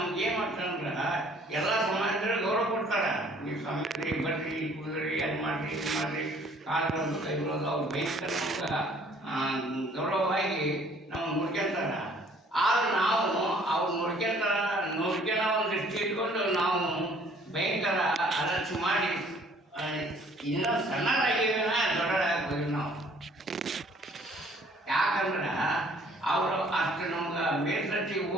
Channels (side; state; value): both; normal; correlation 0.57